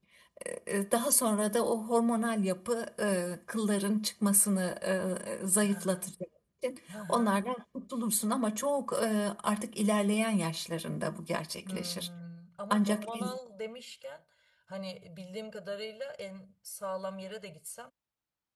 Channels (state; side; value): identical; both; correlation 1.00